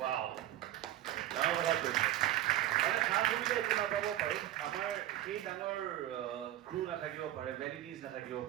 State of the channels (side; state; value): left; quieter; 13.6 dB